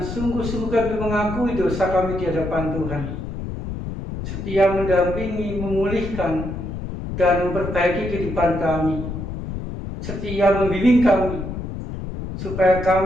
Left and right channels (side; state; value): left; noise; rumble, 7 dB below the sound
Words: kami mengakui dosa kami di hadapan Tuhan, setia mendampingi, memulihkan, dan memperbaiki kehidupan kami, setia membimbing kami, supaya